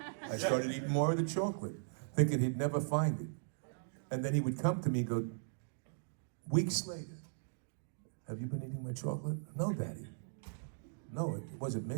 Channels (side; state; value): left; silent; digital silence